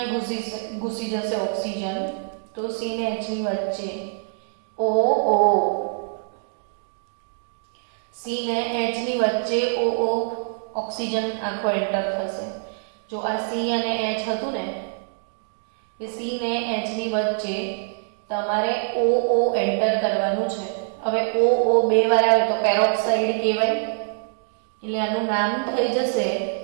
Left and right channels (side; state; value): left; silent; digital silence